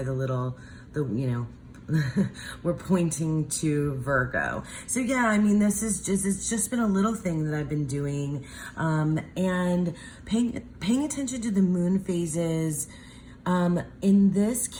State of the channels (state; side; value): identical; both; correlation 1.00